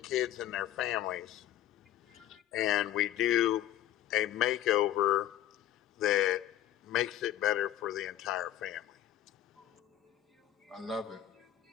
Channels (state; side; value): quieter; right; 12.2 dB